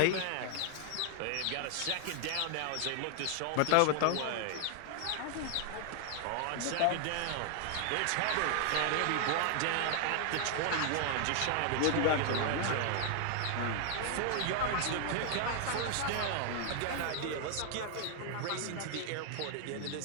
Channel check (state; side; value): different; both; correlation 0.00